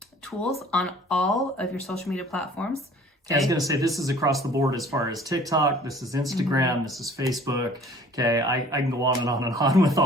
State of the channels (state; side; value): normal; both; correlation 0.51